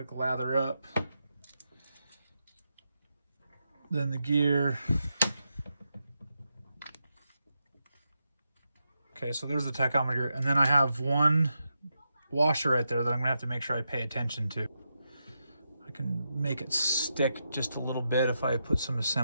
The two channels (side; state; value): both; inverted; correlation -0.86